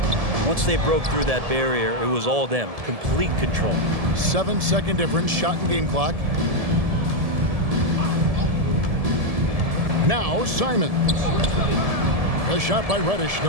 once they broke through that barrier, it was all them. Complete control. 7-second difference, shot and game clock. Now Simons. A shot by Reddish,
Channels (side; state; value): left; late; 1.7 ms